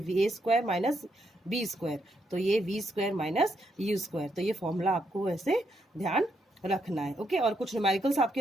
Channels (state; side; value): normal; both; correlation 0.78